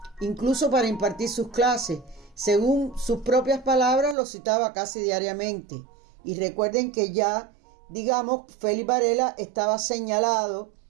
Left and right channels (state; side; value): drops out; left; at 4.2 s